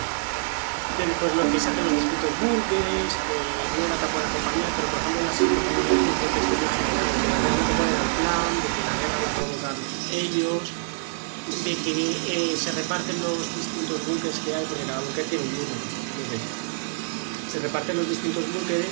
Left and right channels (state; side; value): silent; left; digital silence